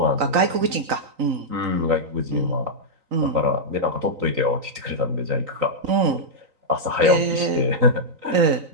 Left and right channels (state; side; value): late; left; 3.9 ms